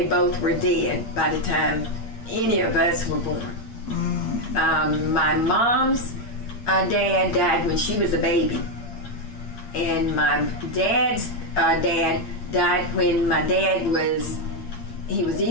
both were dead by the time any of us were born. My mom's dad died when she was a baby. And my dad's dad died when my dad was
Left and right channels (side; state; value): right; late; 8.6 ms